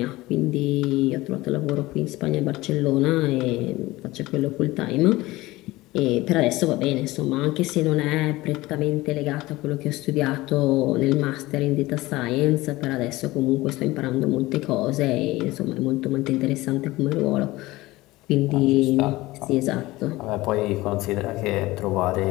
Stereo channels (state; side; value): quieter; right; 19.1 dB